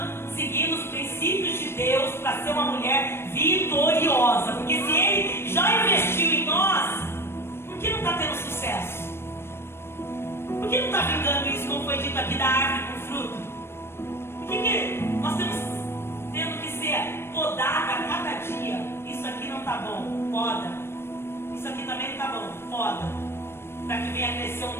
seguindo os princípios de Deus para ser uma mulher vitoriosa. Porque se Ele já investiu em nós, por que não está tendo sucesso? Por que não está vingando isso, como foi dito aqui, da árvore com fruto? Por que nós estamos tendo que ser podada a cada dia? Isso aqui não está bom, poda. Isso aqui também não está bom, poda. Para que venha crescer um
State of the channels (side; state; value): right; late; 0.12 ms